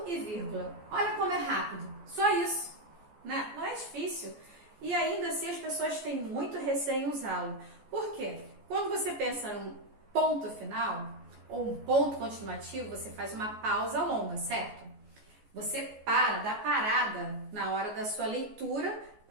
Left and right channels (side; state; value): left; late; 14 ms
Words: e vírgula. Olha como é rápido, só isso, né? Não é difícil. E ainda assim as pessoas têm muito receio em usá-lo. Por quê? Quando você pensa num ponto final ou um ponto continuativo, você faz uma pausa longa, certo? Você dá parada na hora da sua leitura